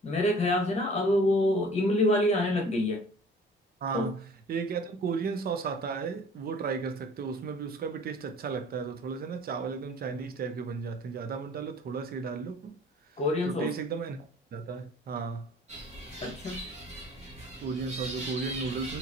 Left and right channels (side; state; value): both; normal; correlation 0.49